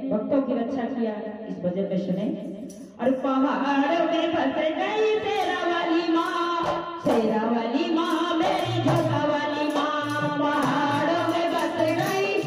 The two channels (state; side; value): identical; both; correlation 1.00